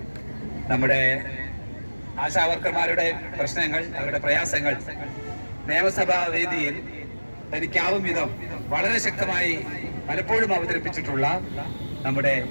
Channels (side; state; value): both; inverted; correlation -1.00